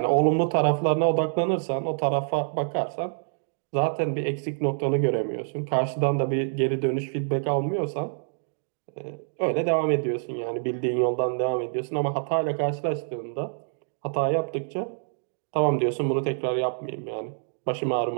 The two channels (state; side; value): silent; left; digital silence